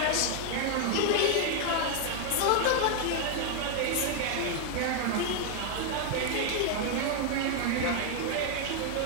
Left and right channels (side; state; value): both; different; correlation 0.00